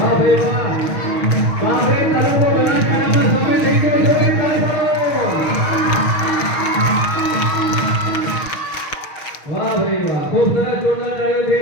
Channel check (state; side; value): late; right; 6.4 ms